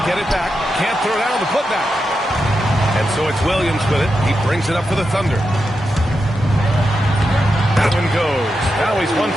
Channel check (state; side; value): normal; both; correlation 0.87